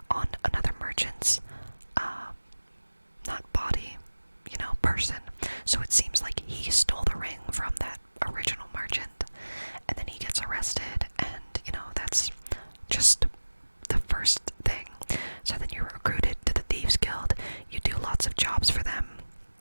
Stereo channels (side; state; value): both; inverted; correlation -1.00